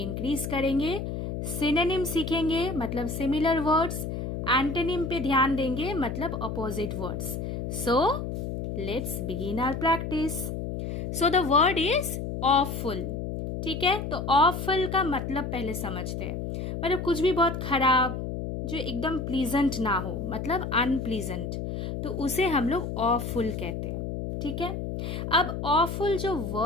करेंगे। सिनोनिम सीखेंगे मतलब सिमिलर वर्ड्स, एंटोनिम पे ध्यान देंगे मतलब opposite words. So let's begin our practice. So the word is awful. ठीक है, तो ऑफुल का मतलब पहले समझते हैं। मतलब कुछ भी बहुत खराब, जो एकदम प्लीजेंट ना हो, मतलब अनप्लीजेंट, तो उसे हम लोग ऑफुल कहते हैं। ठीक है, अब ऑफुल जो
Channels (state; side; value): noise; left; hum, 4 dB below the sound